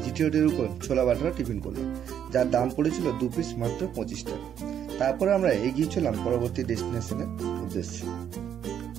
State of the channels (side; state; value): left; quieter; 9.2 dB